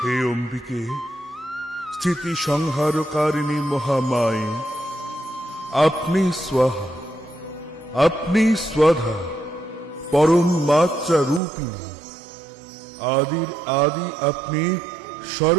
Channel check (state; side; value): drops out; left; at 11.4 s